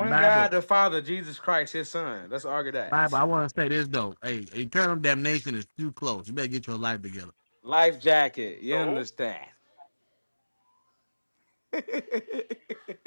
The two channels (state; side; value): inverted; both; correlation -1.00